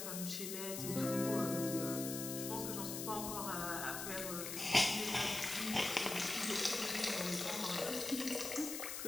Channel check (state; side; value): noise; left; hiss, 5 dB below the sound